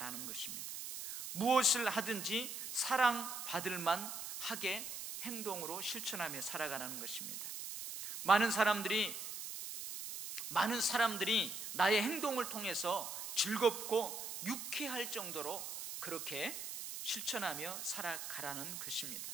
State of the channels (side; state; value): right; noise; hiss, 7 dB below the sound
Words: 것입니다. 무엇을 하든지 사랑받을 만하게 행동으로 실천하며 살아가라는 것입니다. 많은 사람들이 나의 행동을 통해서 즐겁고 유쾌할 정도로 그렇게 실천하며 살아가라는 것입니다.